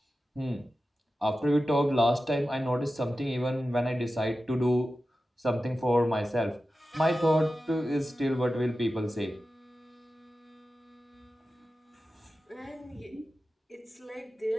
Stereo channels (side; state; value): both; normal; correlation 0.93